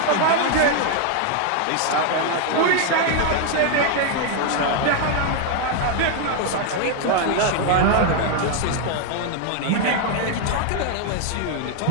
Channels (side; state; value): both; different; correlation 0.00